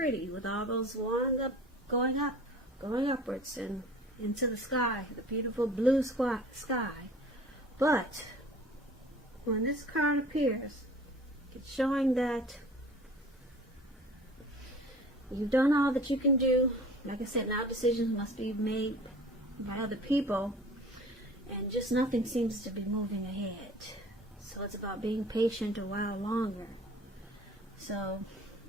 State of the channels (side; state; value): both; normal; correlation 0.45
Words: with all those wands going upwards and into the sky, the beautiful blue sky. But when this card appears, it's showing that you've done all that you can do. Like I said, now decisions must be made by other people, and just nothing seems to be moving ahead. So it's about being patient a while longer. So